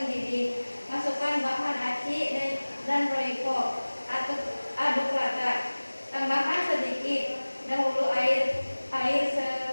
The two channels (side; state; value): both; inverted; correlation -1.00